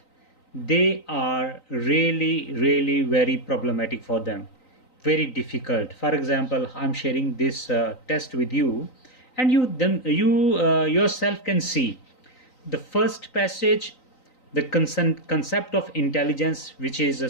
they are really very problematic for them, very difficult. For example, I'm sharing this test with you, and you yourself can see the first passage, the concept of intelligence, which is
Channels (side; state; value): right; late; 3.9 ms